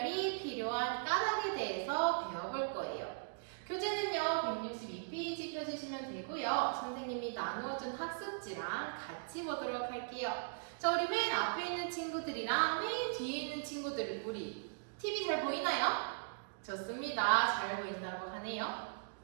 필요한 까닭에 대해서 배워볼 거예요. 교재는요, 162페이지 펴주시면 되고요. 선생님이 나누어준 학습지랑 같이 보도록 할게요. 자, 우리 맨 앞에 있는 친구들이랑 맨 뒤에 있는 친구들, 우리 TV 잘 보이나요? 좋습니다. 잘 보인다고 하네요.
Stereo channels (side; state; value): left; silent; digital silence